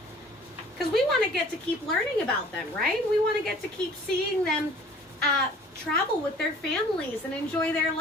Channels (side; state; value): both; normal; correlation 0.50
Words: Because we want to get to keep learning about them, right? We want to get to keep seeing them travel with their families and enjoy their